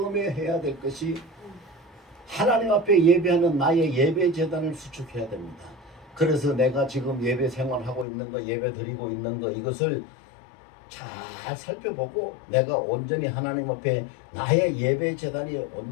해야 될 것이 하나님 앞에 예배하는 나의 예배 재단을 수축해야 됩니다. 그래서 내가 지금 예배 생활하고 있는 거, 예배 드리고 있는 거, 이것을 잘 살펴보고 내가 온전히 하나님 앞에 나의 예배 재단이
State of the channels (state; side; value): drops out; right; at 8.1 s